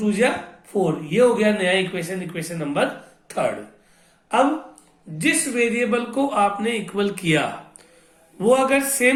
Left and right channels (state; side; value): identical; both; correlation 1.00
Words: जा 4। ये हो गया नया इक्वेशन, इक्वेशन नंबर थर्ड। अब जिस वेरिएबल को आपने इक्वल किया वो अगर